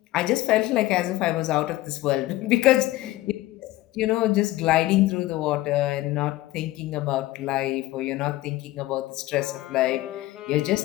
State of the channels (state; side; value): quieter; right; 17.1 dB